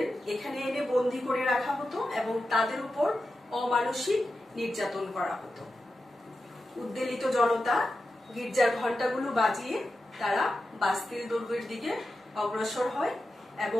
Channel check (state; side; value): normal; both; correlation 0.91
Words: এখানে এনে বন্দী করে রাখা হতো এবং তাদের উপর অমানসিক নির্যাতন করা হতো। উদ্বেলিত জনতা গির্জার ঘন্টাগুলো বাজিয়ে তারা বাস্তিল দুর্গের দিকে অগ্রসর হয়